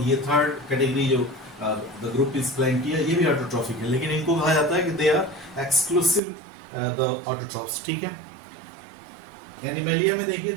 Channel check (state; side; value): drops out; left; at 6.2 s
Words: ये थर्ड कैटेगरी जो द ग्रुप इज प्लांटिया ये भी ऑटोट्रॉफिक है, लेकिन इनको कहा जाता है कि they are exclusive the autotrophs, ठीक है। एनिमेलिया में देखिए